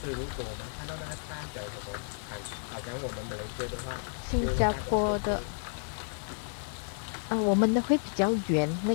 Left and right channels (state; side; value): silent; right; digital silence